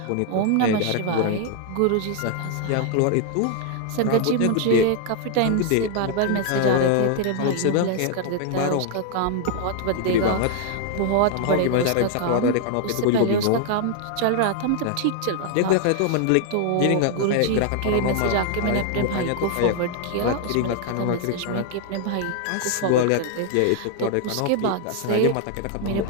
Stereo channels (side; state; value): both; different; correlation 0.00